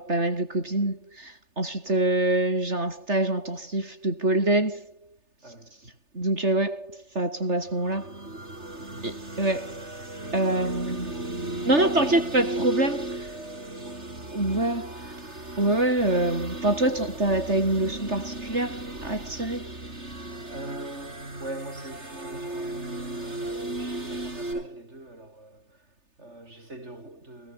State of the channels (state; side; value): late; left; 3.3 ms